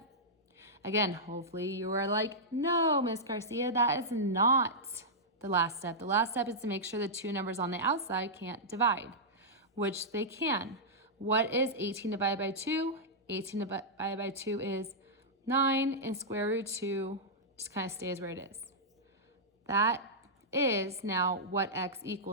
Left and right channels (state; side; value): normal; both; correlation -0.11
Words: Again, hopefully you are like, no, Miss Garcia, that is not the last step. The last step is to make sure the two numbers on the outside can't divide, which they can. What is 18 divided by 2? 18 divided by 2 is 9, and square root 2 just kind of stays where it is. That is now what x